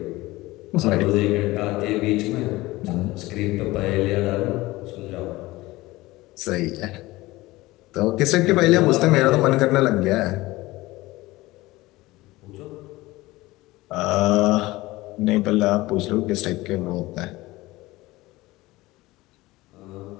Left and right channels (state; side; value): quieter; right; 19.4 dB